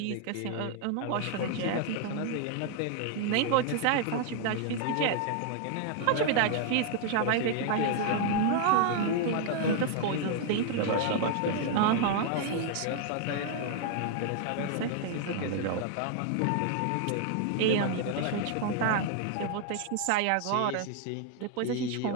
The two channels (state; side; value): different; both; correlation 0.00